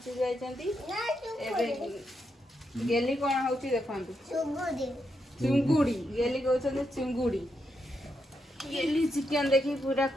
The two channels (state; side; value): normal; both; correlation 0.83